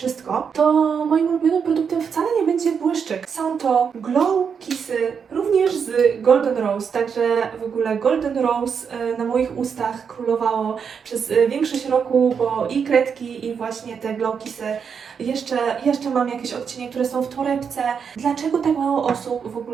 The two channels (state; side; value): quieter; left; 6.6 dB